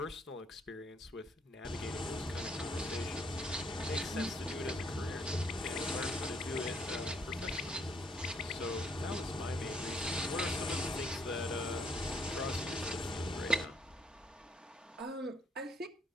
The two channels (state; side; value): normal; both; correlation 0.69